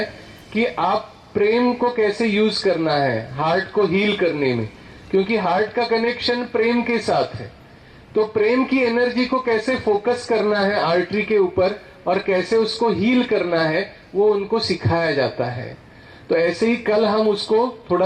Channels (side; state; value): both; identical; correlation 1.00